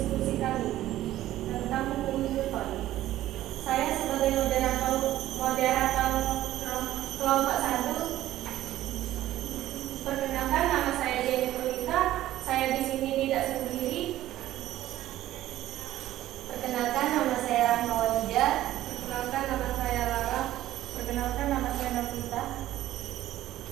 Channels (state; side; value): quieter; left; 14.2 dB